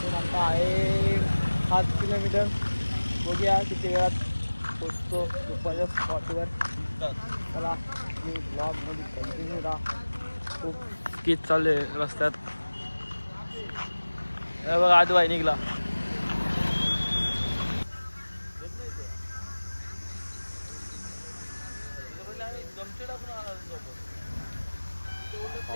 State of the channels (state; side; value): inverted; both; correlation -1.00